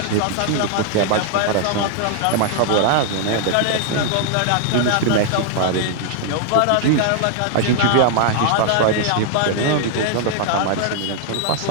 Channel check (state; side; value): different; both; correlation -0.01